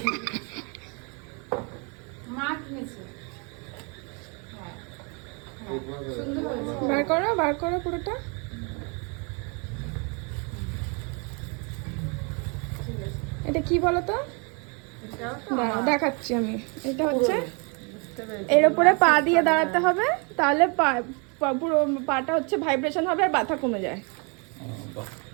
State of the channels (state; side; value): quieter; left; 33.9 dB